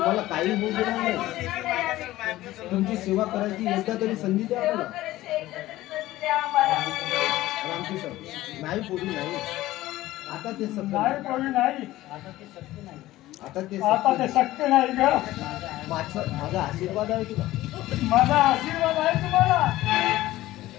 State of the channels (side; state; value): right; quieter; 16.3 dB